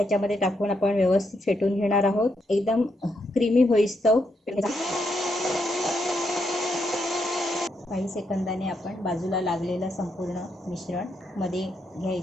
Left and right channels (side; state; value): both; normal; correlation 0.79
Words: टाकून आपण व्यवस्थित फेटून घेणार आहोत, एकदम क्रीमी होईस्तव। काही सेकंदाने आपण बाजूला लागलेलं संपूर्ण मिश्रण मध्ये